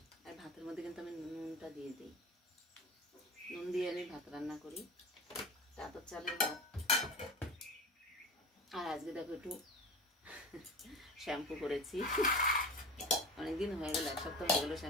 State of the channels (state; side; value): normal; both; correlation 0.32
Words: আর ভাতের মধ্যে কিন্তু আমি নুনটা দিয়ে দিই, নুন দিয়ে আমি ভাত রান্না করি, তারপর চালের ভাত। আর আজকে দেখো একটু শ্যাম্পু করেছি, অনেকদিন হয়ে গেল, 1 সপ্তাহ হয়ে গেলো